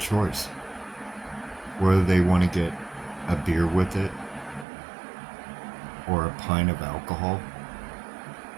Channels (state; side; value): drops out; left; at 4.7 s